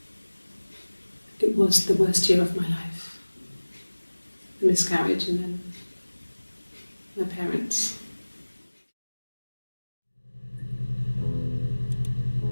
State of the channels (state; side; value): inverted; both; correlation -1.00